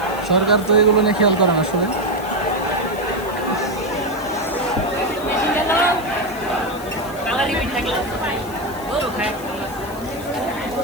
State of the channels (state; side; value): noise; left; hiss, 18 dB below the sound